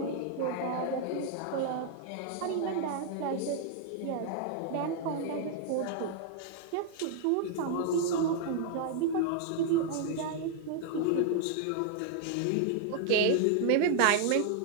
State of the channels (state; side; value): different; both; correlation 0.00